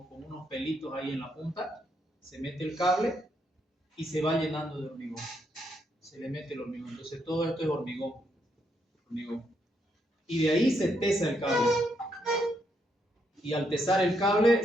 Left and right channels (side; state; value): both; normal; correlation 0.77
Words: unos pelitos ahí en la punta. Se mete el cable y se va llenando de hormigón. Se le mete el hormigón. Entonces todo esto es hormigón. Y de ahí se tesa el cable. Y al tesar el cable